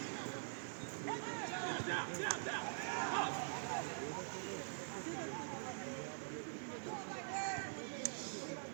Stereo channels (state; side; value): silent; left; digital silence